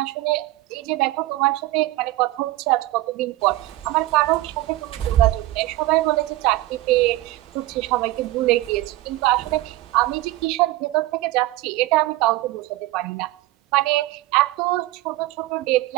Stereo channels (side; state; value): left; quieter; 17.4 dB